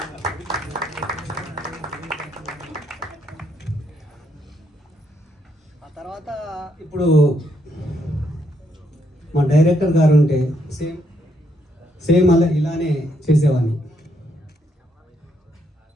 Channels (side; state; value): both; normal; correlation 0.75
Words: ఆ తర్వాత ఇప్పుడు మా డైరెక్టర్ గారు ఉంటే సేమ్ అలా ఇలానే చేసేవాడిని.